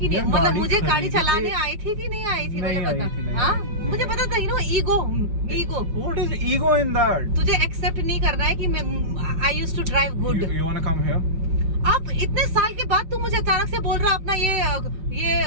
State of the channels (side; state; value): left; late; 5.3 ms